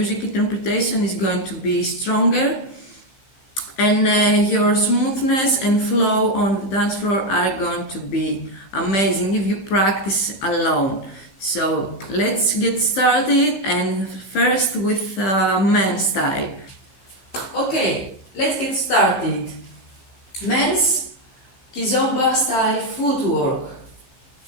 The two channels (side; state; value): right; late; 15 ms